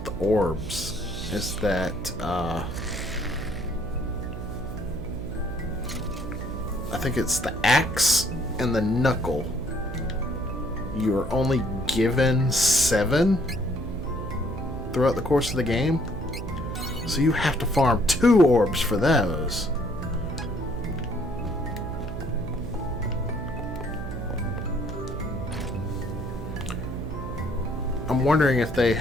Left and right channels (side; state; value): right; noise; hum, 7 dB below the sound